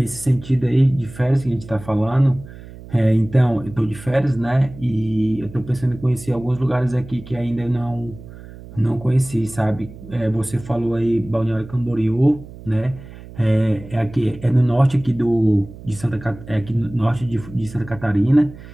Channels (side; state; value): right; noise; hum, 16 dB below the sound